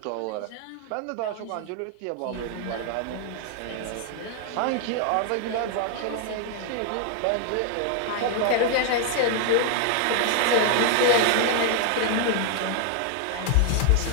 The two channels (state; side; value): different; both; correlation 0.00